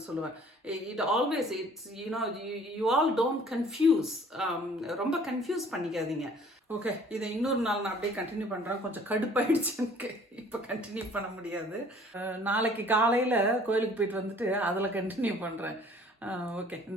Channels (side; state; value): both; normal; correlation 0.54